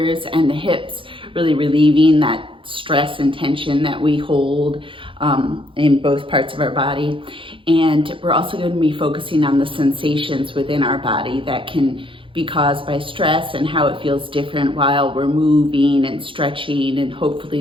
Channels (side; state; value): left; late; 0.25 ms